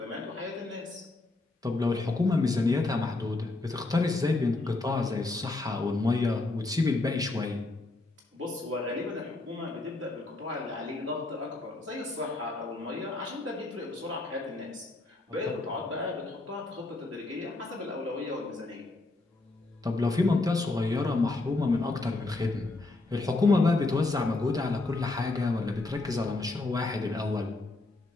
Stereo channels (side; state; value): right; quieter; 3.2 dB